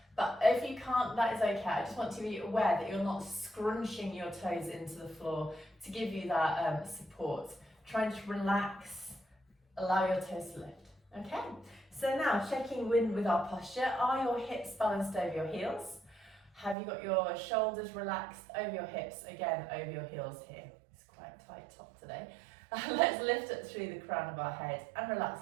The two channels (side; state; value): left; drops out; at 16.8 s